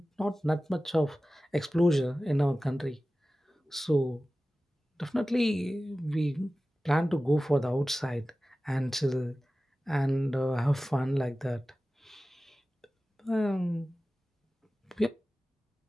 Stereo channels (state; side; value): normal; both; correlation 0.96